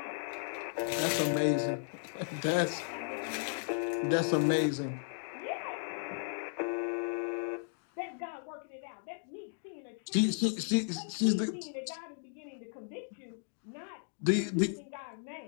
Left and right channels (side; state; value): right; silent; digital silence